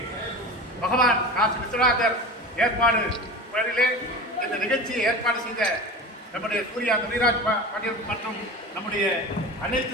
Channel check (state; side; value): normal; both; correlation 0.32